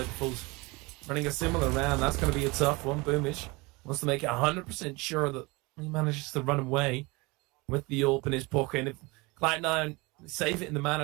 running a similar round, that's going to be a tough one. Boomich wants to make it 100% sure that he manages to run away with the AWP in his pocket. And if Cloud9 save it in the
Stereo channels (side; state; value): left; quieter; 25.1 dB